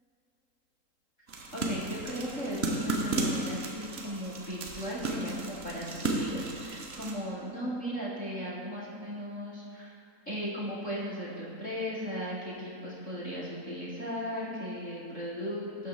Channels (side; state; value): right; late; 3.8 ms